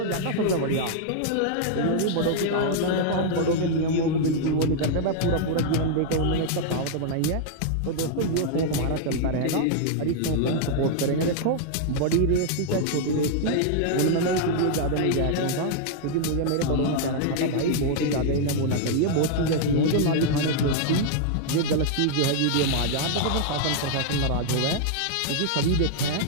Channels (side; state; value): both; different; correlation -0.01